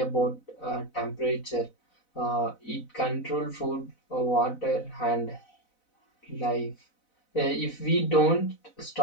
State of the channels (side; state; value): right; late; 4.0 ms